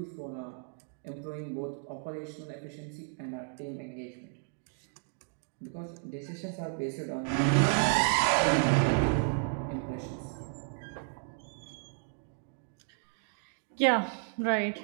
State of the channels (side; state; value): left; silent; 56 dB below the other